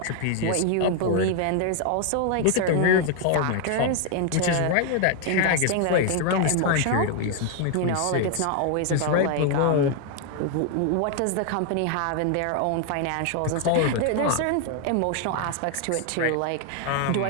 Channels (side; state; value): both; different; correlation 0.00